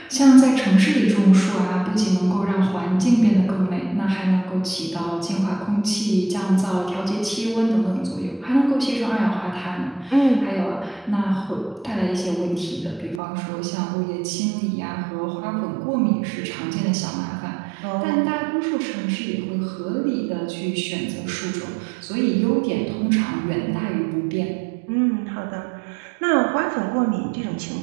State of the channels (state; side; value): drops out; left; at 13.2 s